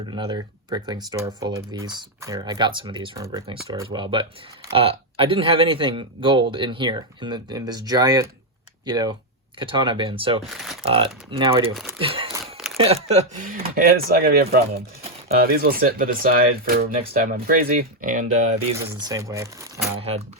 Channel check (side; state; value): both; normal; correlation 0.02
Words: another Bricklink store full of these. Here, I got some of these from a Bricklink store as well. But I didn't have anything gold in here, in this giant, katana bin. So now I do. And it's not going to be a problem. These will sit to the side for next time I'm crazy. And these is the same way. I had